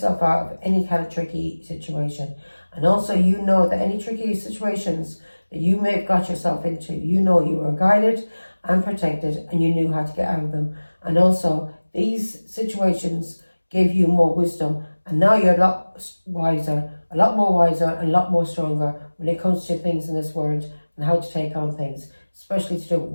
out of any kind of tricky situation. And also, you know that any tricky situations that you may have got yourself into, you know you were guided and protected, and you knew how to get out of them. And also, these situations gave you more wisdom, and now you're a lot wiser, a lot more wiser, and a lot more stronger when it comes to things in this world and how to take on things, especially to do with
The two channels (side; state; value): both; inverted; correlation -1.00